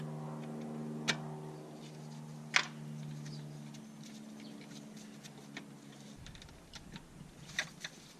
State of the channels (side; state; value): both; identical; correlation 1.00